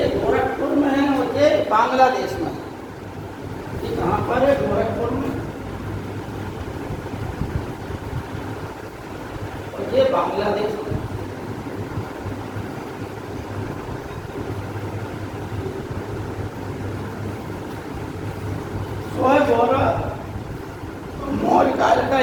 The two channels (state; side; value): identical; both; correlation 1.00